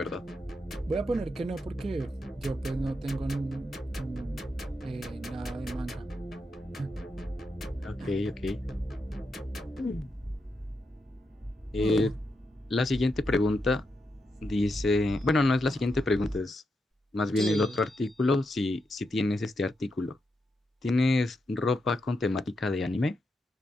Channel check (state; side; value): normal; both; correlation 0.84